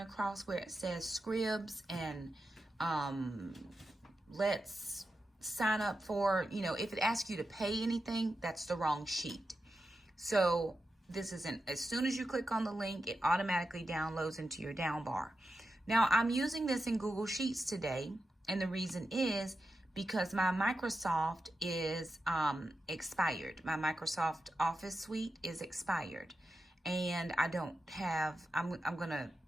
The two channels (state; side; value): normal; both; correlation 0.90